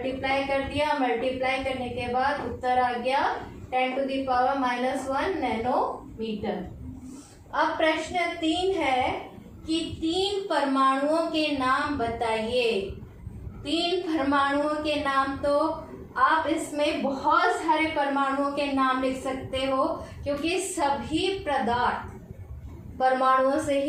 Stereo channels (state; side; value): identical; both; correlation 1.00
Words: कर दिया। मल्टीप्लाई करने के बाद उत्तर आ गया 10⁻⁻1 नैनोमीटर। अब प्रश्न 3 है कि 3 परमाणुओं के नाम बताइए। 3 परमाणुओं के नाम, तो आप इसमें बहुत सारे परमाणुओं के नाम लिख सकते हो, क्योंकि सभी पदार्थ परमाणुओं से